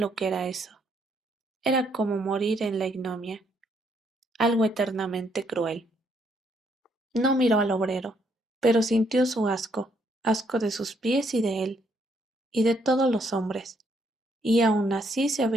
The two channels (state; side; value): normal; both; correlation 0.71